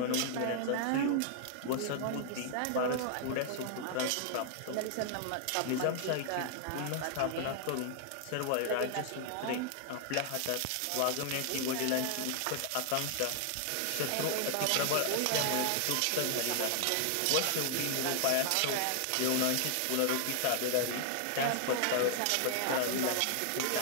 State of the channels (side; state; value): both; different; correlation 0.00